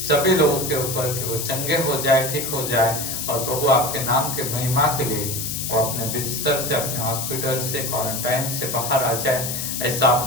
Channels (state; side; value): noise; left; hiss, 3 dB below the sound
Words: लोगों के ऊपर कि वो चंगे हो जाए, ठीक हो जाए और प्रभु आपके नाम के महिमा के लिए वो अपने बिस्तर से, अपने हॉस्पिटल से, क्वारंटाइन से बाहर आ जाए। ऐसा